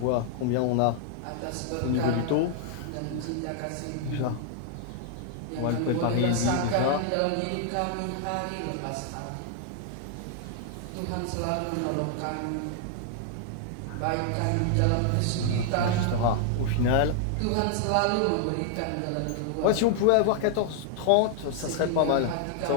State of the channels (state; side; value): different; both; correlation 0.00